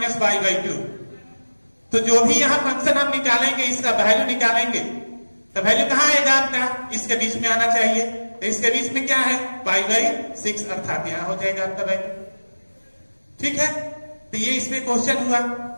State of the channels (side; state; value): both; inverted; correlation -1.00